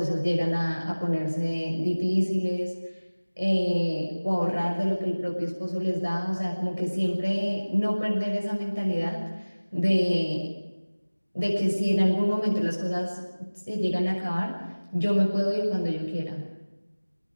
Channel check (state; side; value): inverted; both; correlation -1.00